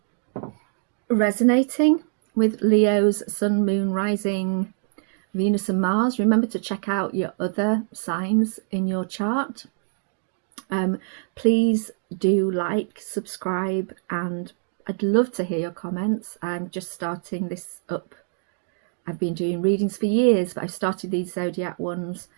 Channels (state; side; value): silent; left; digital silence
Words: resonating with Leo's Sun, Moon, Rising, Venus and Mars. Remember to check out your other signs in your chart. Please do like, subscribe, and I'd love to hear your comments. I'm just starting this up. I've been doing readings for years, but I've started these zodiac ones,